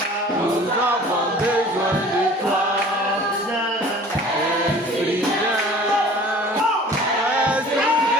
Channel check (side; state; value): both; normal; correlation 0.47